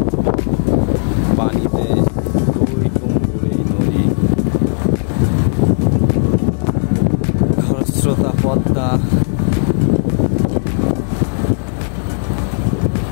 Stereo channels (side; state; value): right; silent; digital silence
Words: পানিতে, টইটুম্বুর এই নদী। খরস্রোতা পদ্মা,